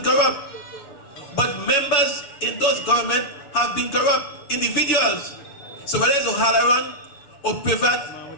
corrupt, but members in those governments have been corrupt individuals. So whether it's O'Halloran, or Privat,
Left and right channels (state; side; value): late; right; 6.9 ms